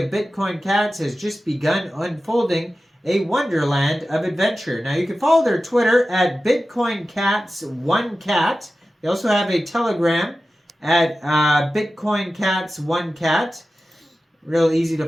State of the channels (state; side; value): normal; both; correlation 0.94